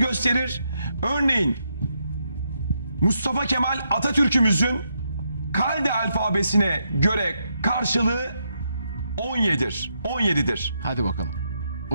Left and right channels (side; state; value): both; inverted; correlation -0.80